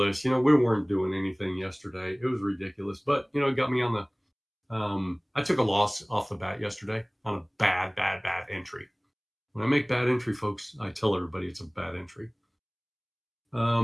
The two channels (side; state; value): both; identical; correlation 1.00